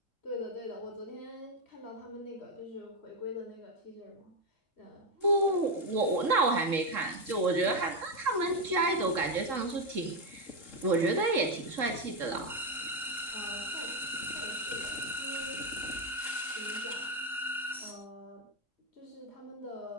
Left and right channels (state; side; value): normal; both; correlation 0.06